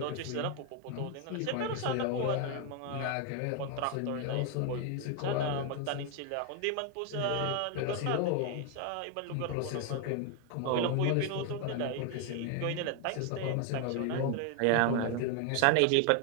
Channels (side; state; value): both; different; correlation 0.01